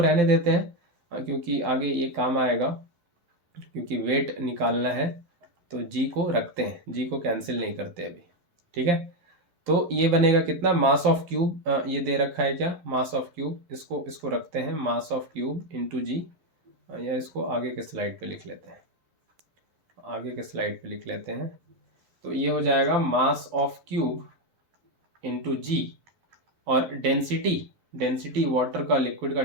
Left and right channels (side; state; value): left; late; 12 ms